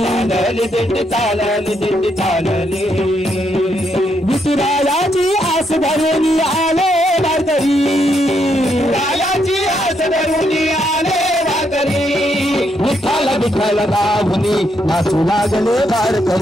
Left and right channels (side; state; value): both; normal; correlation 0.77